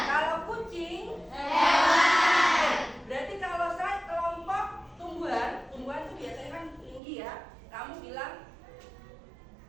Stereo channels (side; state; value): left; drops out; at 7.0 s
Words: Kalau kucing, hewan. Berarti kalau saya kelompok tumbuhan itu biasanya kan tinggi ya. Kamu bilang